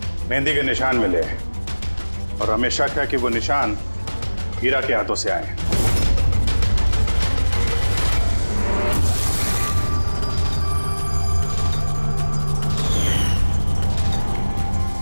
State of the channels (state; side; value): inverted; both; correlation -1.00